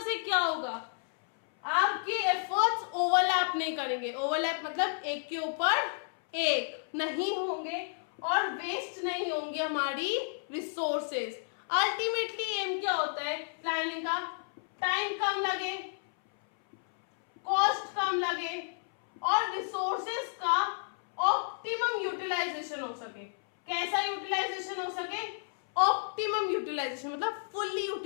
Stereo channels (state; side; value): silent; right; 57 dB below the other